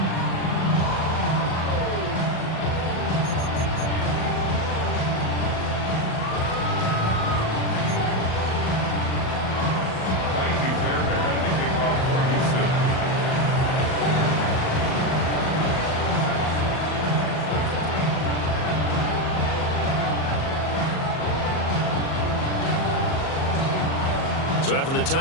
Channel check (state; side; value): late; right; 38 ms